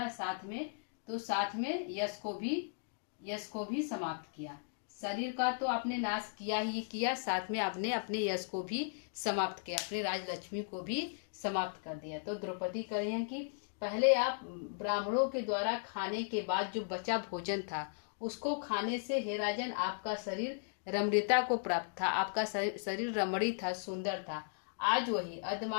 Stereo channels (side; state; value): right; silent; digital silence